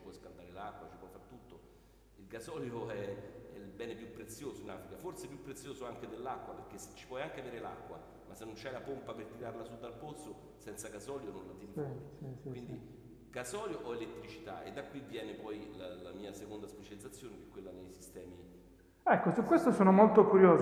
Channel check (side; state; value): both; identical; correlation 1.00